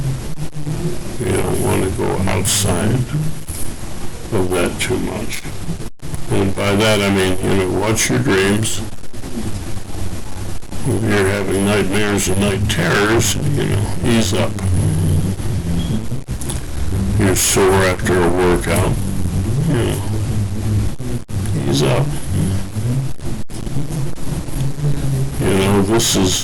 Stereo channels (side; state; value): both; identical; correlation 1.00